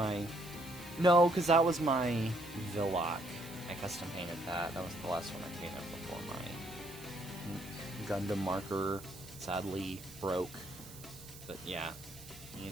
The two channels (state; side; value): noise; right; hiss, 16 dB below the sound